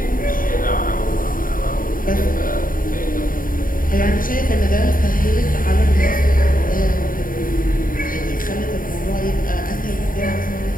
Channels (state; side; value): late; right; 0.40 ms